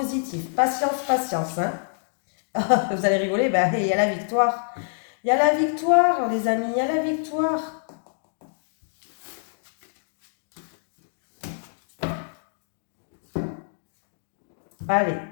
Patience, patience, hein. Vous allez rigoler, ben, il y a la victoire. Il y a la victoire, les amis, il y a la victoire. Allez,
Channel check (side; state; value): right; silent; digital silence